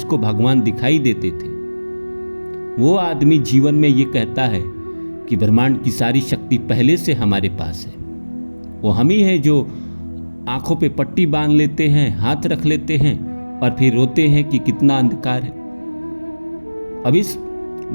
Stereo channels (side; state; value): both; inverted; correlation -1.00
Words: भगवान दिखाई देते थे, वो आदमी जीवन में ये कहता है कि ब्रह्मांड की सारी शक्ति पहले से हमारे पास है। वो हम ही हैं जो आंखों पे पट्टी बांध लेते हैं, हाथ रख लेते हैं और फिर रोते हैं कि कितना अंधकार है। अब इस